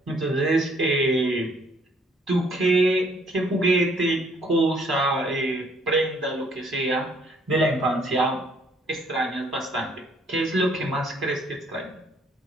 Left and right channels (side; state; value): both; normal; correlation 0.64